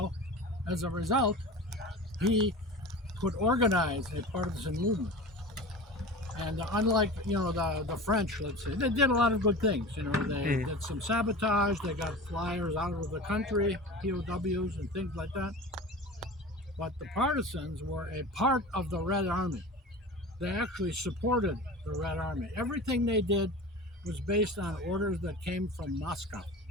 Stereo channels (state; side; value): normal; both; correlation 0.34